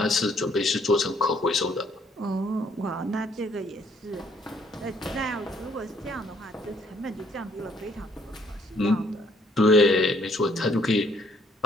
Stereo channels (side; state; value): both; normal; correlation 0.65